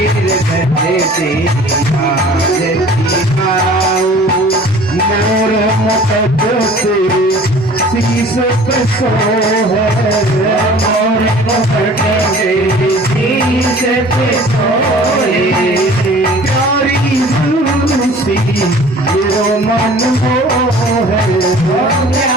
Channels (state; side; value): normal; both; correlation 0.47